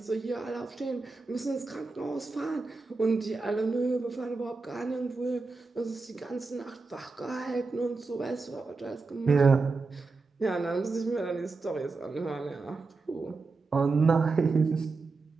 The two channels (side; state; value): left; quieter; 4.0 dB